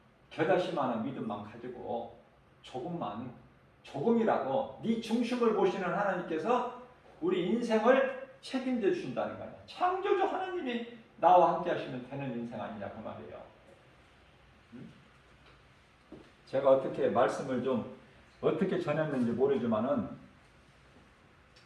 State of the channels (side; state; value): both; identical; correlation 1.00